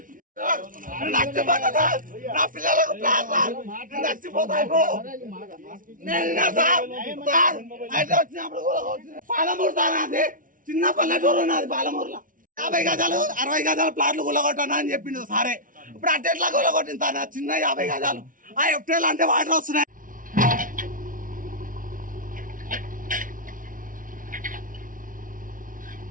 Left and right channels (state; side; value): late; left; 0.39 ms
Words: నా పిల్లలకు నచ్చిపోతాయి పాలమూరు సార్ అది చిన్న పల్లెటూరు ఉన్నది పాలమూరులో 50 గజాలు 60 గజాల ప్లాట్లు గుల్లగొట్టాను అని చెప్పిండు సారే ఇప్పుడు అట్టెట్లా గుల్లగొట్టింది సార్ చిన్న 50 గజాలు ఆ ఎఫ్టీఎల్ అంటే వాటర్ వస్తున్నాయి